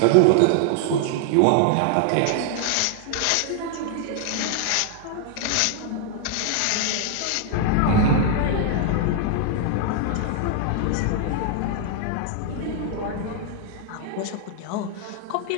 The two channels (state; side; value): different; both; correlation -0.01